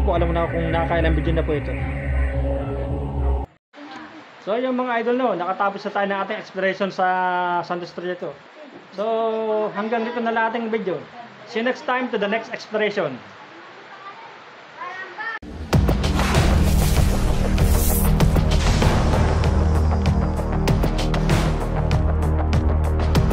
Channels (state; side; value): identical; both; correlation 1.00